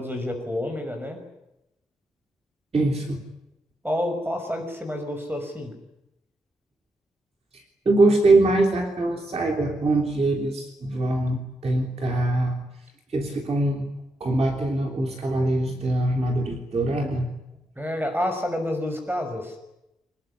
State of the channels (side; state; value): both; normal; correlation 0.83